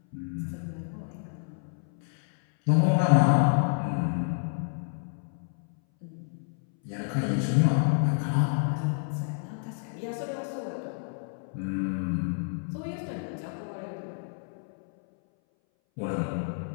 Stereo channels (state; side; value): silent; right; 58 dB below the other